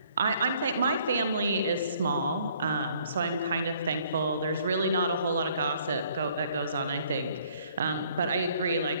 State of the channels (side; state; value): both; inverted; correlation -0.62